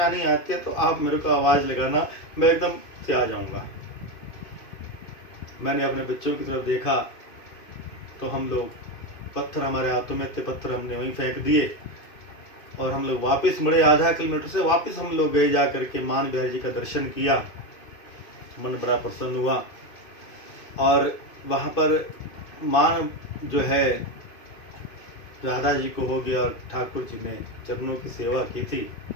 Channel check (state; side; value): late; right; 2.5 ms